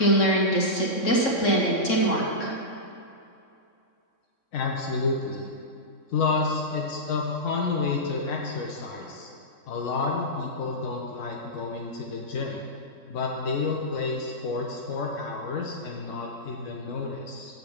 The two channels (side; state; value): right; late; 3.6 ms